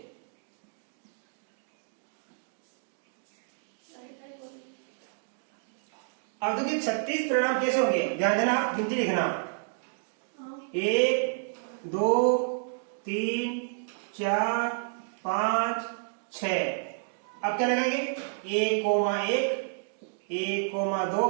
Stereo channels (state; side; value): silent; left; digital silence